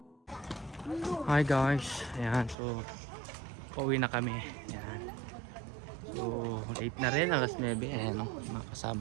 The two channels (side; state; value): left; drops out; at 2.6 s